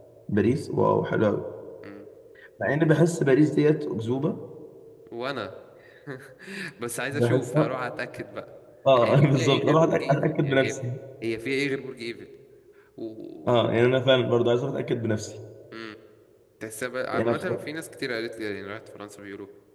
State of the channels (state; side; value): identical; both; correlation 1.00